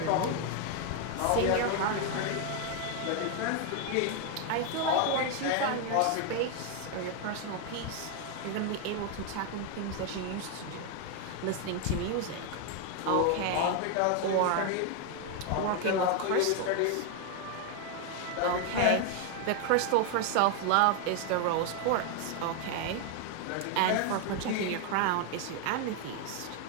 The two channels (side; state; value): both; different; correlation 0.01